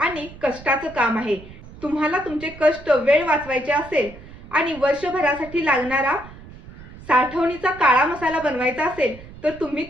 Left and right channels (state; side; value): noise; right; rumble, 17 dB below the sound